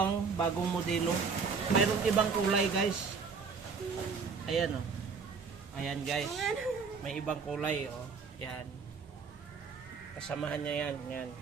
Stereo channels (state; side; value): quieter; left; 5.3 dB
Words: bagong modelo. Mayroong ibang kulay guys. Ayan oh. Ayan guys. May ibang kulay oh. Yan. Kasamahan niya yan. Yan.